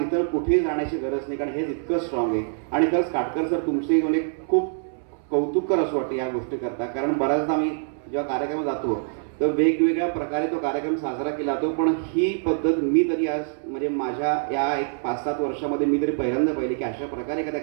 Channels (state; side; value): silent; left; 62 dB below the other